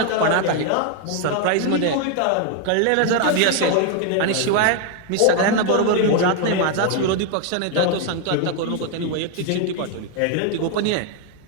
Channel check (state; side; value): different; both; correlation 0.00